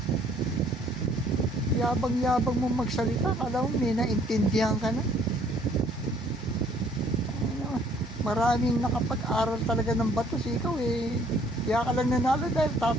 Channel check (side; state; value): both; normal; correlation 0.61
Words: Yabang-yabang mo magsalita, kala mo may naintindihan ka na. Maraming nakapag-aral talaga ng batos, ikaw eh. Kaya ka lang nanalo dahil